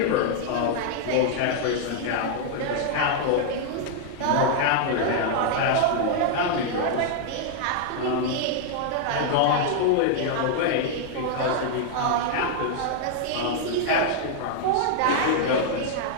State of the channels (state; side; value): different; both; correlation 0.00